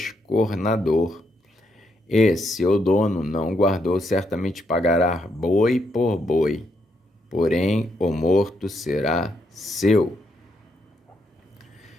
e seu dono não guardou, certamente pagará boi por boi, porém o morto será seu.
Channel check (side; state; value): both; normal; correlation 0.77